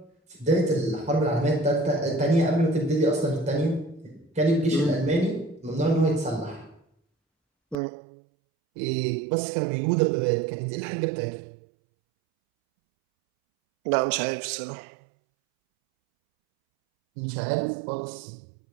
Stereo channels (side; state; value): left; drops out; at 7.8 s